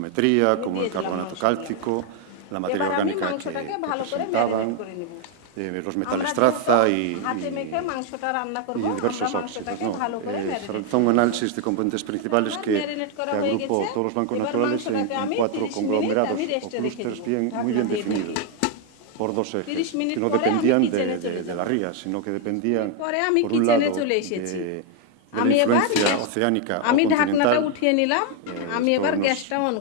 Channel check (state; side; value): different; both; correlation 0.01